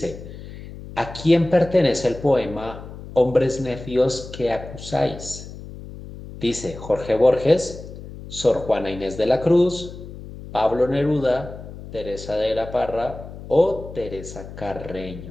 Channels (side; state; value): left; noise; hum, 13 dB below the sound